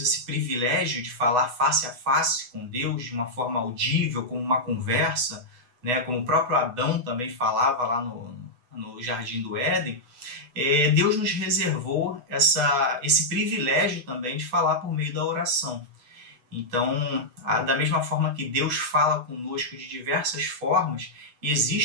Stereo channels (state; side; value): late; left; 8.1 ms